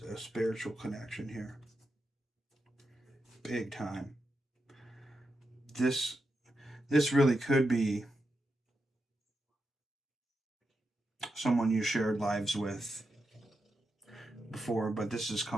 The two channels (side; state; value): both; normal; correlation 0.87